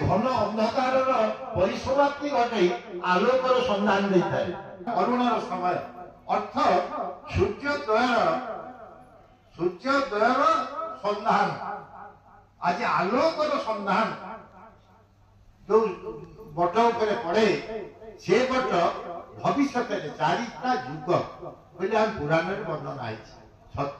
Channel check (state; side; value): identical; both; correlation 1.00